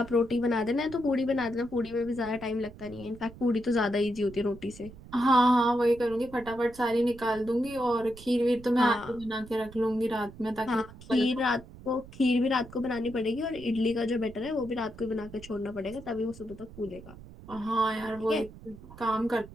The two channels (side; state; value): right; noise; rumble, 18 dB below the sound